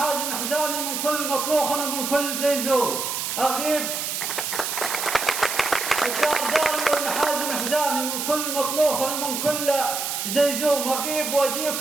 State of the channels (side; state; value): right; noise; hiss, 3 dB below the sound